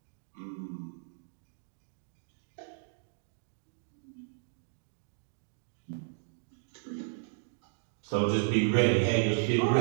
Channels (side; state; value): left; silent; digital silence